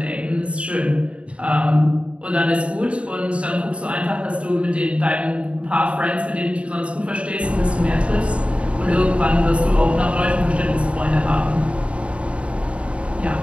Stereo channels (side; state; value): left; late; 0.061 ms